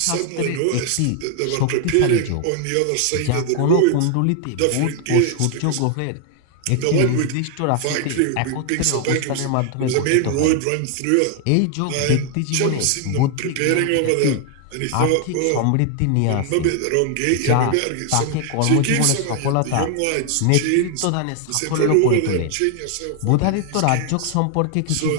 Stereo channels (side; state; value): both; different; correlation 0.00